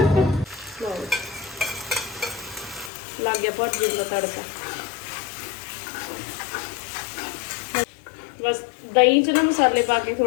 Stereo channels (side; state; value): right; drops out; at 2.9 s